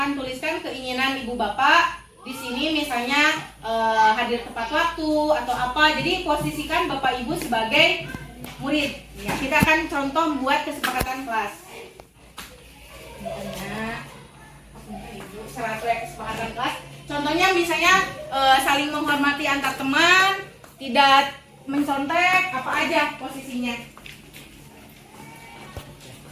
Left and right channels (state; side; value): identical; both; correlation 1.00